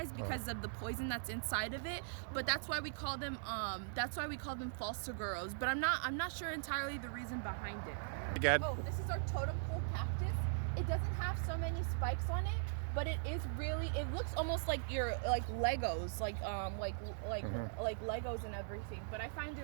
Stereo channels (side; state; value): left; silent; digital silence